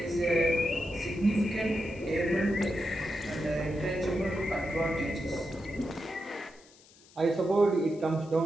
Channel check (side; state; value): left; noise; hiss, 26 dB below the sound